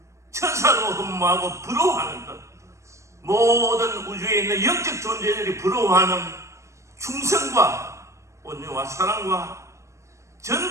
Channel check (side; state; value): left; late; 0.14 ms